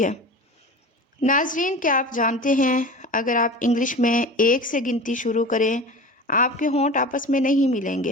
ہے۔ ناظرین، کیا آپ جانتے ہیں اگر آپ انگلش میں 1 سے گنتی شروع کریں، آپ کے ہونٹ آپس میں نہیں ملیں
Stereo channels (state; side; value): normal; both; correlation 0.34